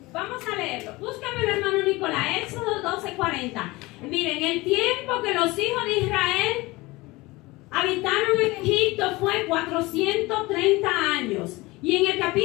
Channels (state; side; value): quieter; right; 21.6 dB